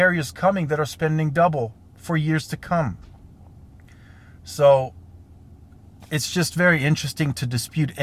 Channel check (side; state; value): both; identical; correlation 1.00